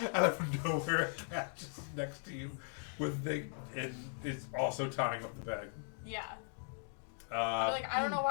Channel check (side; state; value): right; silent; 52 dB below the other